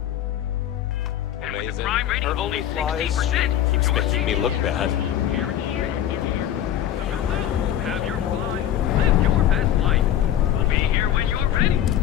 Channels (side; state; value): right; quieter; 11.0 dB